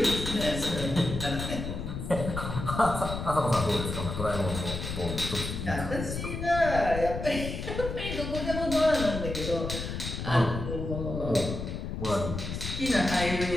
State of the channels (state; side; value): noise; left; rumble, 5 dB below the sound